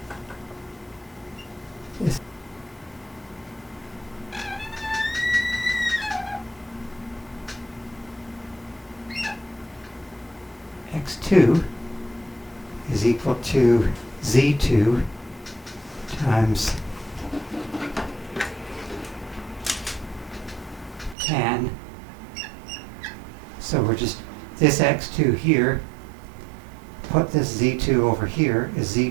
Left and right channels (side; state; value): left; drops out; at 21.2 s